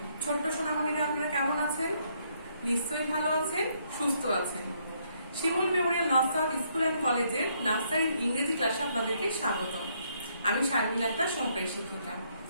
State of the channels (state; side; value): inverted; both; correlation -0.71